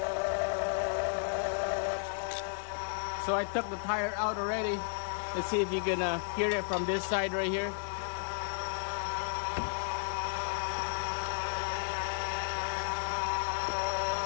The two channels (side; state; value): right; silent; digital silence